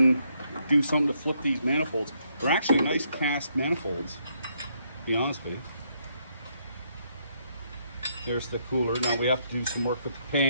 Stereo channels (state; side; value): inverted; both; correlation -0.74